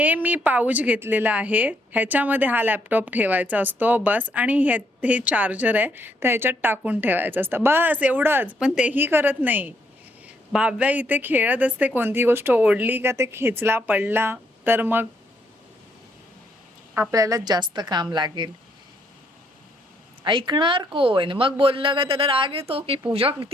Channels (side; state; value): both; normal; correlation 0.73